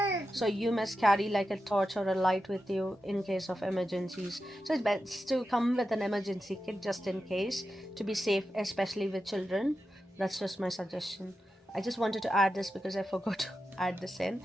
So you must carry like a torch or a light with you in case of emergencies. So it's best to come with an emergency kit just in case, to be safe, especially with children. That's just my suggestion. I just wanted to add this because I forgot to add this in,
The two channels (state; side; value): normal; both; correlation 0.90